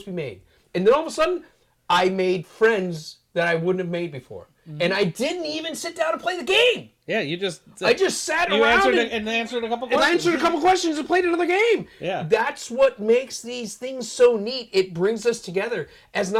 to be made. And then all of a sudden, I made friends that I wouldn't have made before. And I didn't even sit down and play the game. Yeah, I just sat around and answered a couple questions. And I answered a couple questions and played another game. Yeah. That's what makes these things so neat. It brings us together as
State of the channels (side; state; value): both; identical; correlation 1.00